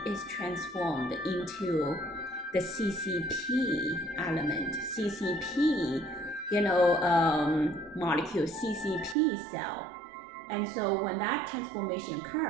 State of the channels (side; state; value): left; drops out; at 9.2 s